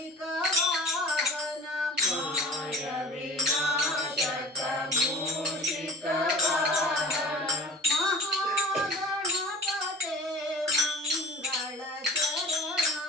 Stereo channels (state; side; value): normal; both; correlation 0.41